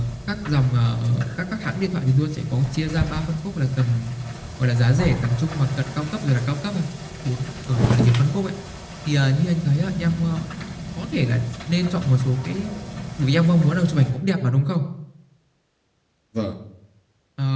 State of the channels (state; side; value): identical; both; correlation 1.00